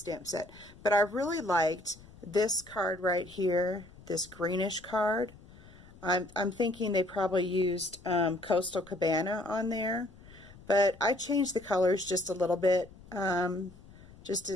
stamp set. But I really liked this card right here, this greenish card. I'm thinking they probably used Coastal Cabana on there, but I changed the colors just a little bit. Just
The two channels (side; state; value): left; noise; rumble, 21 dB below the sound